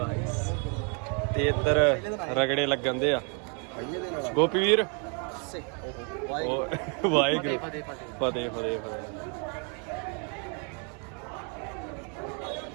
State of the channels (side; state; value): left; quieter; 37.8 dB